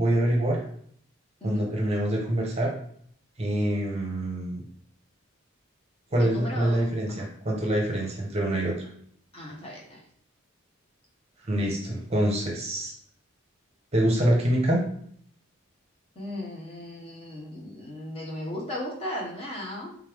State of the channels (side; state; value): both; normal; correlation 0.78